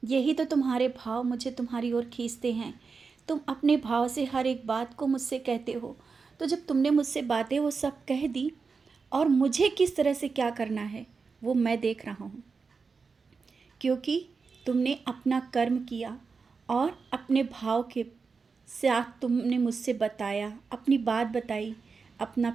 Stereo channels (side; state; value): left; quieter; 4.9 dB